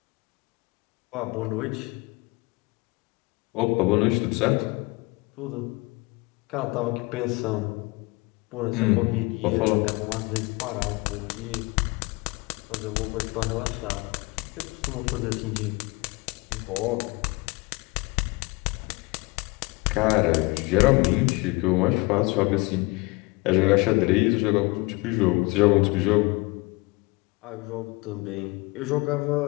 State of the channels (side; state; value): right; quieter; 25.4 dB